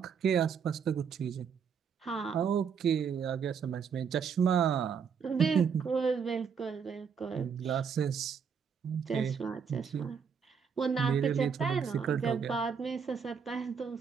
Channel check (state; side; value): quieter; left; 6.6 dB